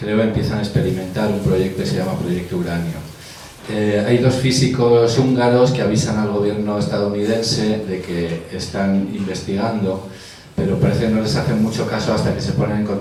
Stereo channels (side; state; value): both; identical; correlation 1.00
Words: empiezan a experimentar un proyecto que se llama Proyecto Uranio. Hay dos físicos húngaros que avisan al gobierno estadounidense de que están investigando, pero parece que no les hacen mucho caso hasta que se ponen en